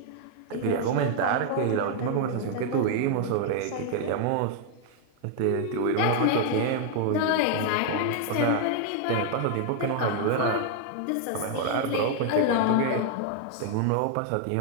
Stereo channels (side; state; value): both; different; correlation 0.00